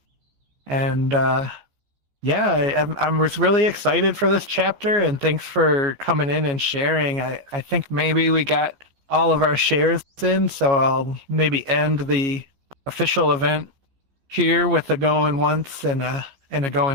And yeah, I was really excited for this chapter, and thanks for coming in and sharing. I think maybe we got all of our shares in, so I'll maybe end the official event here with a going once and a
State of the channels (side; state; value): left; late; 15 ms